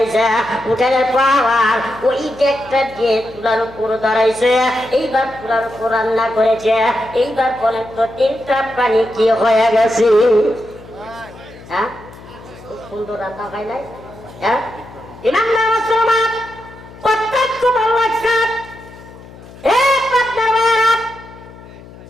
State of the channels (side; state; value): left; noise; hum, 19 dB below the sound